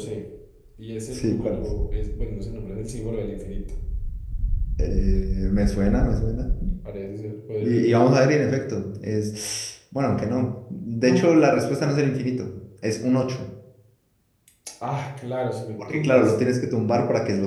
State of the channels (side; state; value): both; identical; correlation 1.00